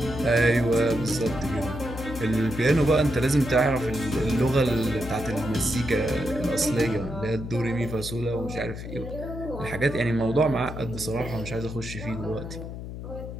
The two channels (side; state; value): left; noise; hum, 9 dB below the sound